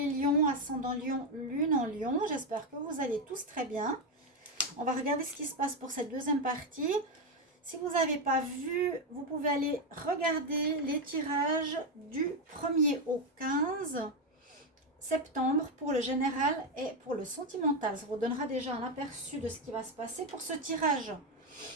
Lions, ascendant Lion, lune en Lion. J'espère que vous allez tous très bien. On va regarder ce qui se passe pour cette deuxième partie. Si vous n'avez pas vu, vous pouvez aller regarder les tirages du 1er au 15 septembre pour le général et pour le sentimental. Ça vous donnera déjà un aperçu de ce qui va se passer pour ce tirage.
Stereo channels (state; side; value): normal; both; correlation 0.07